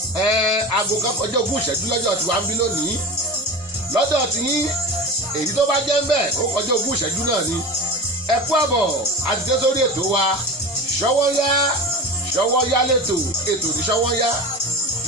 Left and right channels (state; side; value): normal; both; correlation 0.30